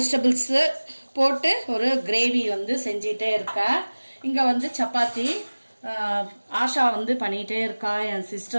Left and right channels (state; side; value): inverted; both; correlation -1.00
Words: போட்டு ஒரு கிரேவி வந்து செஞ்சிட்டே இருக்கேன். இங்க வந்து சப்பாத்தி ஆஷா வந்து பண்ணிட்டே இருக்கா. என்